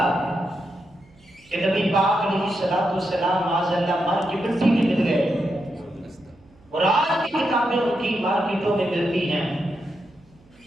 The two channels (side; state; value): right; noise; hum, 29 dB below the sound